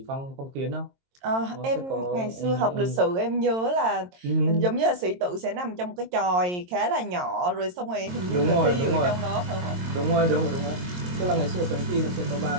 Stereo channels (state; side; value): late; left; 22 ms